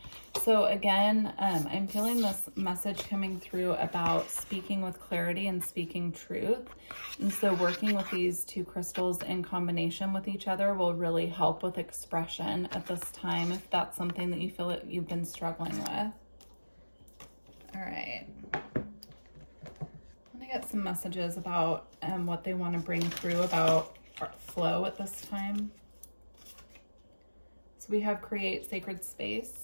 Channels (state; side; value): inverted; both; correlation -1.00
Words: So again, I'm feeling this message coming through about speaking with clarity and speaking truth. And so working with these two crystals in combination with each other will really help with expression at this time, if that's something that you feel that you've been struggling with. All right. I'm gonna get some messages about what they want to bring through about flow at this time. So we have create sacred